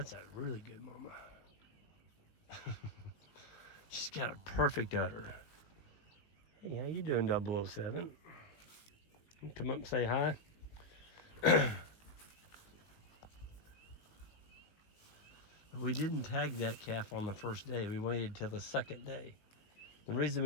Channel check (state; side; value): late; right; 19 ms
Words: a really good mama. She's got a perfect udder. Hey, how you doing, 007? You come up and say hi. We didn't tag that calf on the first day. We waited till the second day. The reason